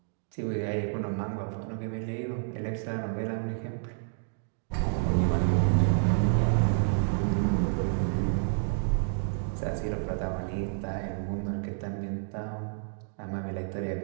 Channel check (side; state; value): left; silent; digital silence